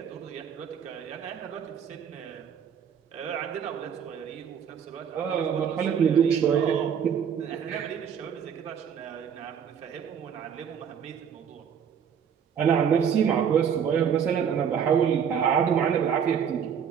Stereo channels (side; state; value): left; quieter; 7.8 dB